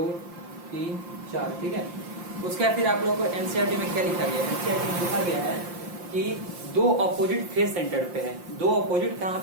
3 4, ठीक है। उसके बाद फिर आप लोगों को एनसीईआरटी में क्या लिखा गया है, एनसीईआरटी में लिखा गया है कि 2 ऑपोजिट फेस सेंटर्ड पे है, 2 ऑपोजिट कहाँ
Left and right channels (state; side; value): late; left; 5.7 ms